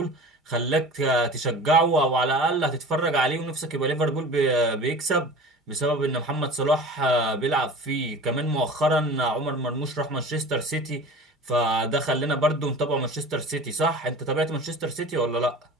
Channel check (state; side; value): normal; both; correlation 0.39